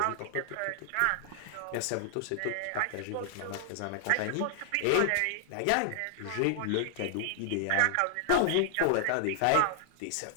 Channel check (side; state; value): both; different; correlation -0.01